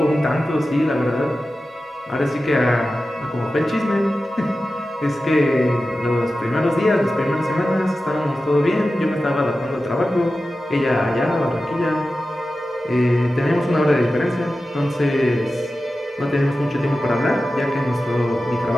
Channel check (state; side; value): normal; both; correlation 0.93